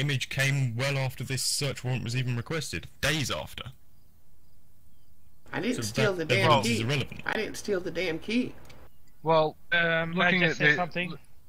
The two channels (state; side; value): identical; both; correlation 1.00